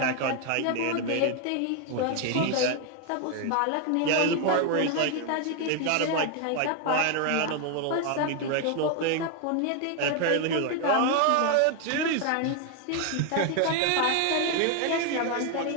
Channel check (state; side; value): different; both; correlation 0.01